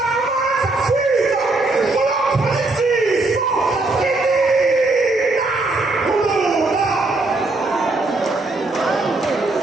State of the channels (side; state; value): left; quieter; 3.1 dB